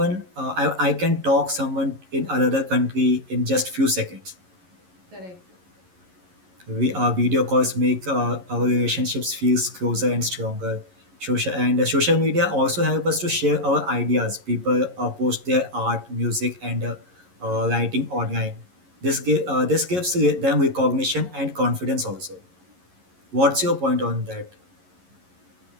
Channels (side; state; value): left; late; 11 ms